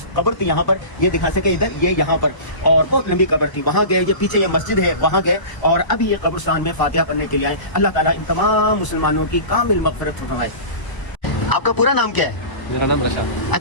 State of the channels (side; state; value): right; late; 1.0 ms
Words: थी यहाँ पर, ये दिखा सके इधर, ये यहाँ पर, और बहुत लंबी कब्र थी, वहाँ गए, ये पीछे ये मस्जिद है, वहाँ गए, और अभी ये कब्रिस्तान में फातिहा पढ़ने के लिए आए। अल्लाह ताला इन तमाम मुसलमानों की कामिल मग़फ़िरत फरमाए। आपका पूरा नाम क्या है? मेरा नाम रशाद।